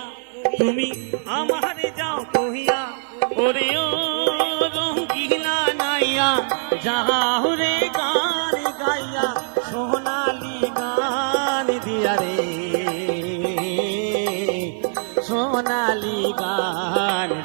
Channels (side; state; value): left; silent; digital silence